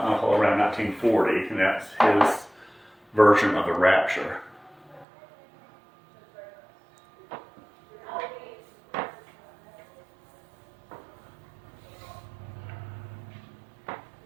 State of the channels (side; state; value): left; drops out; at 5.1 s